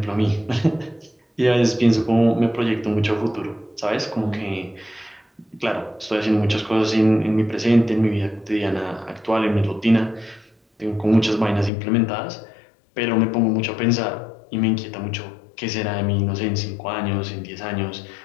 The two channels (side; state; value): right; drops out; at 11.7 s